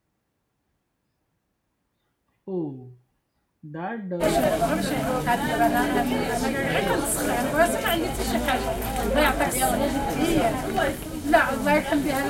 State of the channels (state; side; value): identical; both; correlation 1.00